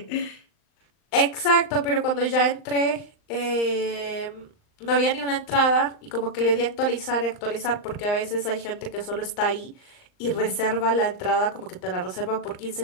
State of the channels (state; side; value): late; right; 39 ms